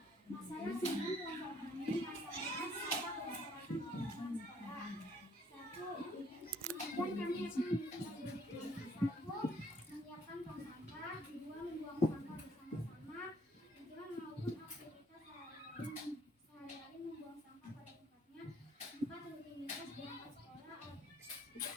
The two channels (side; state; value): both; normal; correlation 0.64